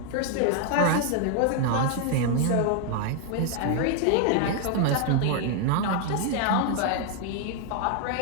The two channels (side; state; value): both; different; correlation 0.00